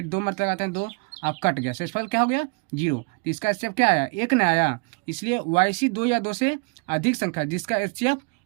2 मारते लगाते हैं 2, अब कट गया, शेषफल क्या हो गया? 0। तो इसका HCF क्या आया? 1 नहीं आया। इसलिए वैसी 2 या 2 से अधिक संख्या जिसका HCF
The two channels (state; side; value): quieter; left; 33.7 dB